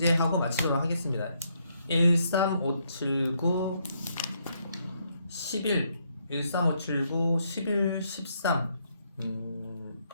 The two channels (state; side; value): inverted; both; correlation -0.74